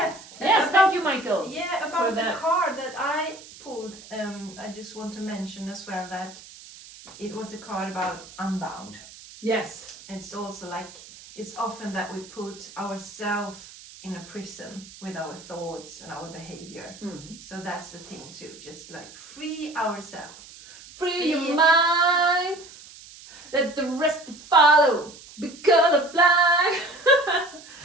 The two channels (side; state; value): right; noise; hiss, 18 dB below the sound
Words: about- thank you, Michael. Yeah, for about the that. card that I pulled, I just want to mention as well that it was a card about unbound. Yes. It's also like, it's often that we put ourselves in a prison with our thoughts and our behavior. So that's the thing too, just like free ourselves. Free your mind. Let the rest follow. Be colorblind.